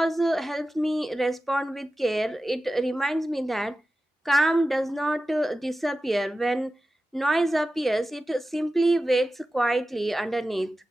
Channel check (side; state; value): both; normal; correlation 0.94